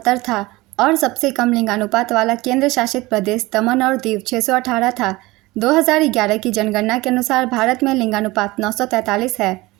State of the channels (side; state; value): left; quieter; 20.7 dB